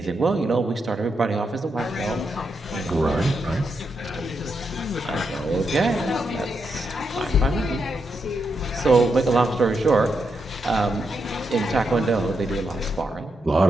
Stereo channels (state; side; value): normal; both; correlation 0.83